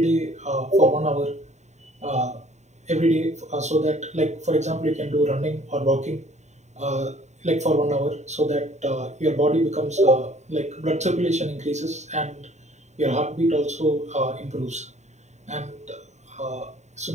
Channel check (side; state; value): left; late; 0.34 ms